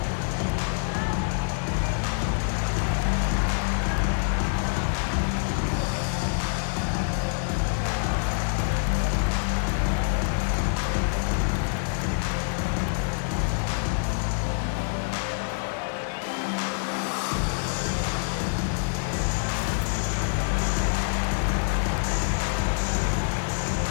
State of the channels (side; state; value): right; silent; digital silence